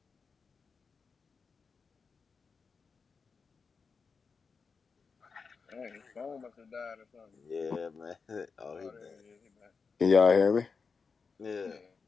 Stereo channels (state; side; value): quieter; right; 5.1 dB